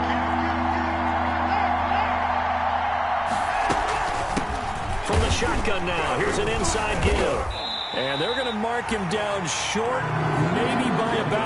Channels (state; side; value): identical; both; correlation 1.00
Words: Shotgun now. Here's an inside give. And they're going to mark him down short, maybe by